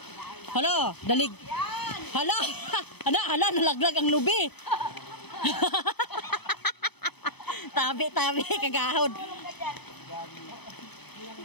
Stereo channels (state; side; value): late; right; 0.98 ms